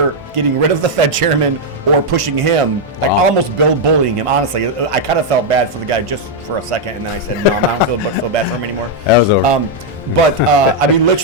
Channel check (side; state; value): both; normal; correlation -0.02